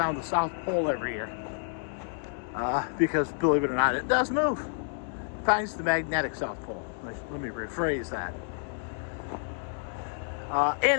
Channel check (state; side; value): silent; right; 58 dB below the other